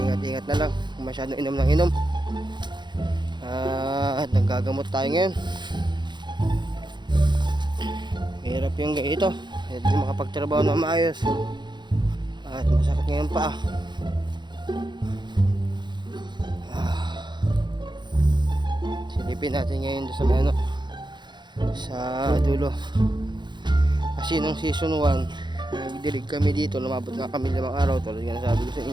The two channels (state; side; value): late; left; 0.22 ms